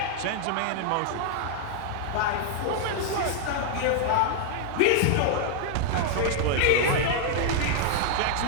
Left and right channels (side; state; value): both; different; correlation 0.00